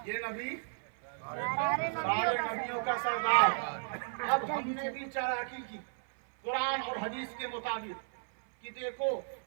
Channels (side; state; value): left; silent; 55 dB below the other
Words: ये नबी सारे नबियों का सरदार। अब हमने भी चालाकी की कुरान और हदीस के मुताबिक कि देखो